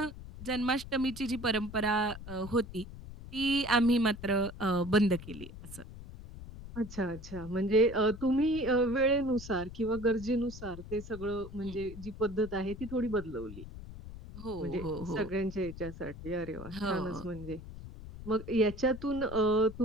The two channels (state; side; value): noise; left; rumble, 13 dB below the sound